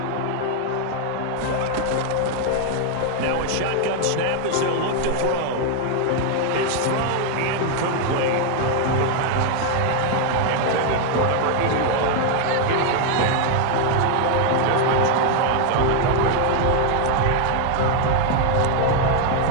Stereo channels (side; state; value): both; different; correlation 0.01